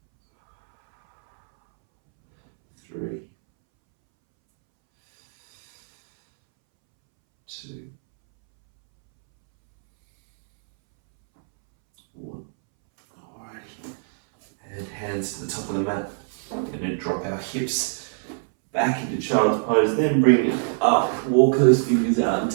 3, 2, 1. Alrighty. And hands to the top of the mat. I'm going to drop our hips back into child's pose, then bring it up, walk those fingers out and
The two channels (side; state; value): left; silent; 63 dB below the other